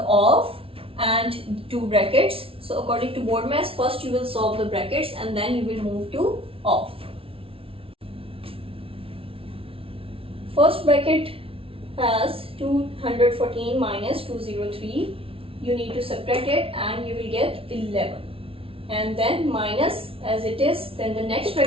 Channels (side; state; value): left; late; 0.26 ms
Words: of and two brackets. So according to board maths, first you will solve the brackets and then you will move to of. First bracket has 214 minus 203. You need to subtract it and you will get 11. And then minus as it is, then the next